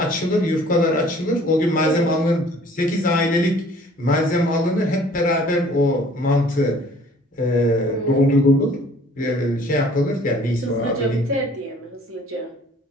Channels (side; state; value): both; normal; correlation 0.54